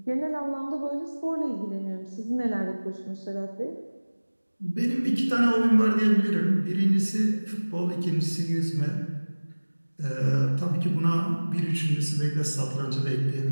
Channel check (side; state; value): both; inverted; correlation -1.00